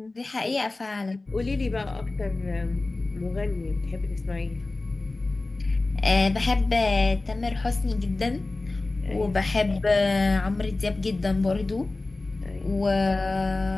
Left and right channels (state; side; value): quieter; right; 3.2 dB